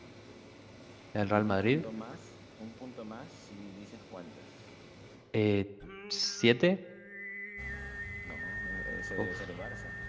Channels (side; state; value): both; identical; correlation 1.00